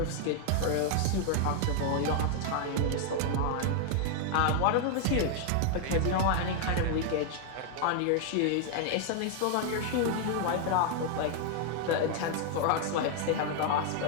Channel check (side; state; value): both; different; correlation 0.00